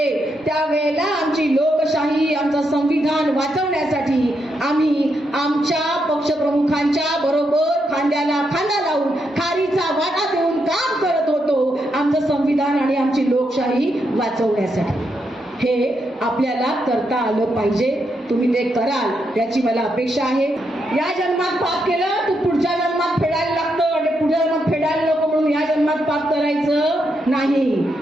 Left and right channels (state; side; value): normal; both; correlation 0.81